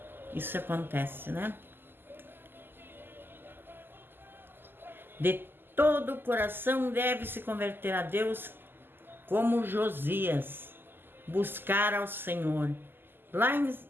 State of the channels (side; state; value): left; late; 0.097 ms